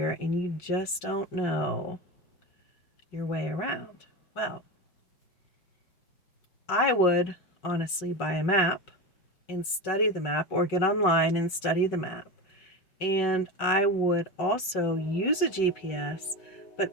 and you just don't know your way around. Well, I would honestly buy a map and study the map, or get online and study the map. And I would also use a GPS,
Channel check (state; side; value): late; right; 5.3 ms